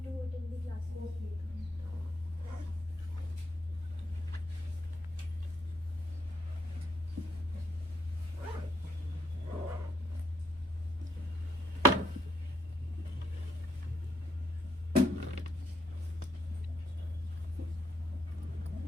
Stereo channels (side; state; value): both; normal; correlation 0.74